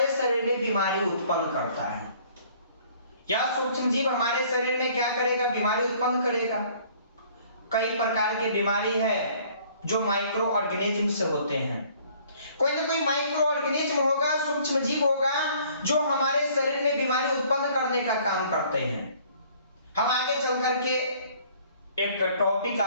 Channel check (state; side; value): inverted; both; correlation -0.56